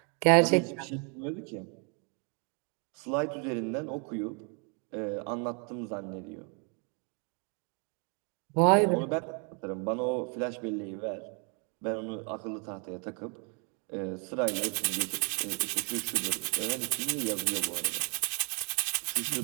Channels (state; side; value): quieter; left; 37.0 dB